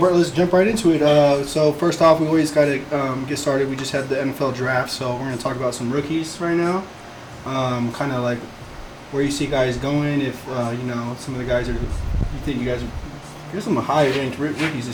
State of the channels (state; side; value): identical; both; correlation 1.00